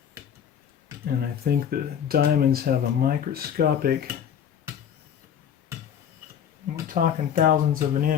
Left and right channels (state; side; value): quieter; right; 8.7 dB